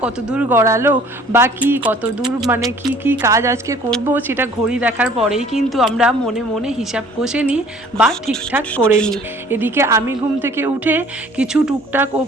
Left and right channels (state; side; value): normal; both; correlation 0.53